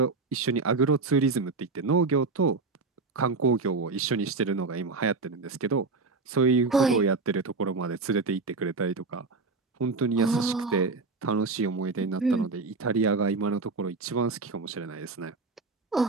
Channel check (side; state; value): left; quieter; 4.0 dB